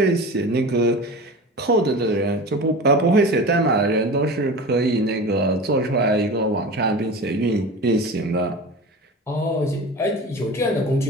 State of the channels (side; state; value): both; normal; correlation 0.32